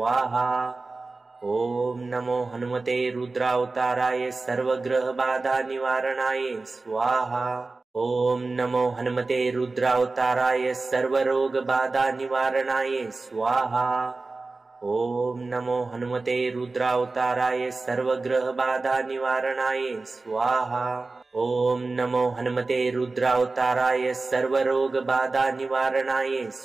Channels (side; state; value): left; quieter; 3.6 dB